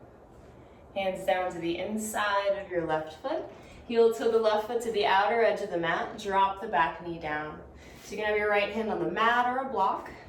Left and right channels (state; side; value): identical; both; correlation 1.00